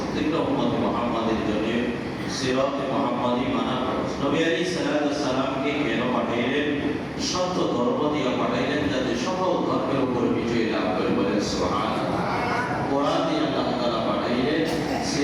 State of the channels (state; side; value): identical; both; correlation 1.00